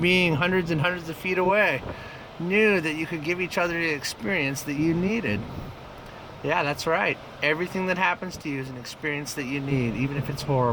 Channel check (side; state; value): both; identical; correlation 1.00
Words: hundreds and hundreds of feet away, knew that you could give each other the experience that you needed. Yeah, that's right. Everything that happens to you is an experience that you need, even if it's